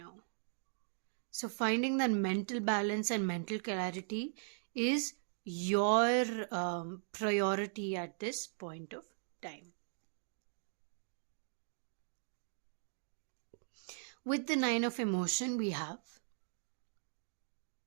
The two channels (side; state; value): left; silent; digital silence